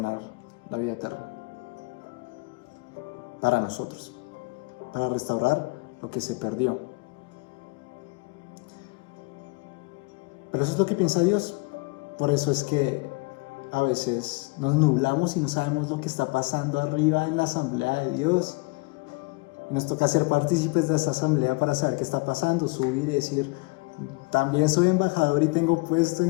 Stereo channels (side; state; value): right; quieter; 27.8 dB